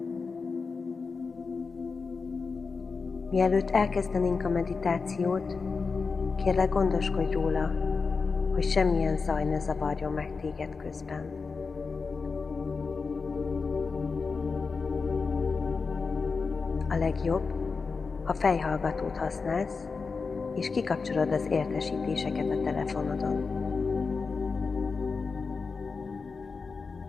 Mielőtt elkezdenénk a meditációt, kérlek gondoskodj róla, hogy semmilyen zaj ne zavarjon meg téged közben. A legjobb, ha fejhallgatót használsz, és kikapcsolod az értesítéseket a telefonodon.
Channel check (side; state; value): right; quieter; 4.7 dB